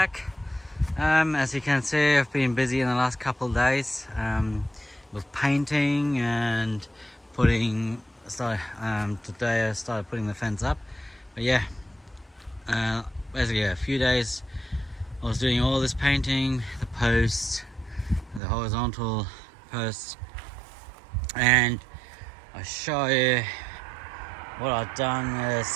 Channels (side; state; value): left; drops out; at 18.4 s